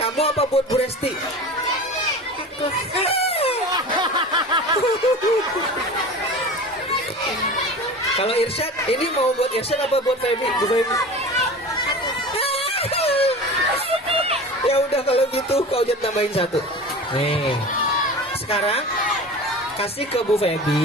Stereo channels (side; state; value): both; normal; correlation 0.34